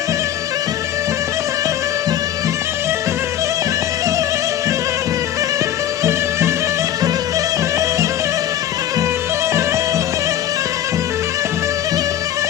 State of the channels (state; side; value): quieter; right; 11.3 dB